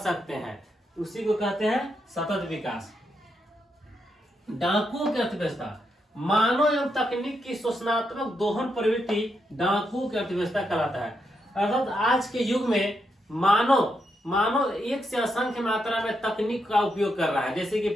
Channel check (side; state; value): both; normal; correlation 0.82